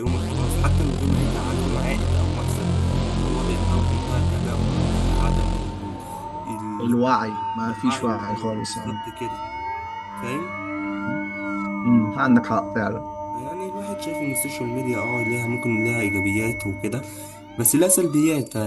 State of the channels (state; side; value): identical; both; correlation 1.00